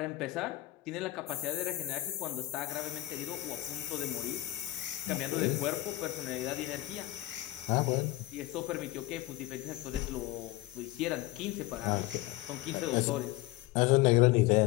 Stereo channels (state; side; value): quieter; right; 17.7 dB